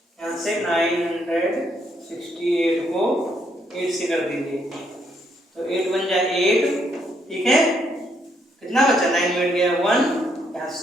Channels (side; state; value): both; normal; correlation 0.73